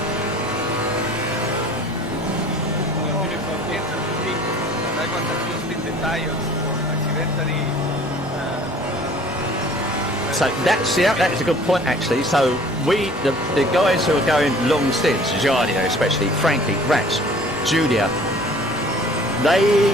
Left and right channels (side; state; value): both; normal; correlation 0.50